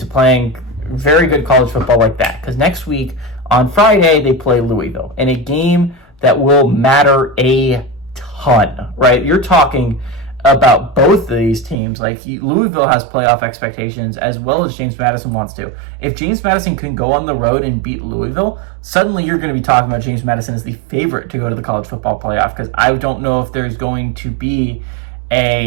playing very good college football like that, because next week on Friday they play Louisville in a game that will matter a ton, right? You're talking about both of these teams. Like, Louisville has playoff expectations as well as James Madison wants to. If James Madison can go on the road and beat Louisville, suddenly you're going to be talking about James Madison as the favorite to go to the college football playoff, because I don't know if there's going to be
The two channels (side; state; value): left; drops out; at 11.8 s